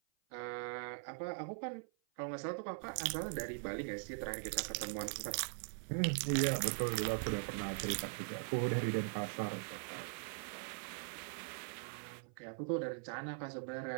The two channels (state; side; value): silent; left; 50 dB below the other